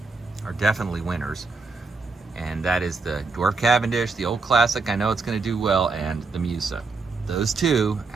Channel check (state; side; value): quieter; left; 4.0 dB